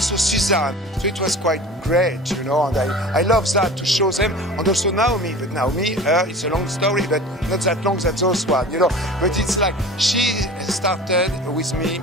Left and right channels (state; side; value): normal; both; correlation 0.38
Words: Suzanne. So it was quite great, you know, and I love that to show them. And also Naomi, but Naomi, it's a long story, but not that long as those one, you know. But it's like she started with me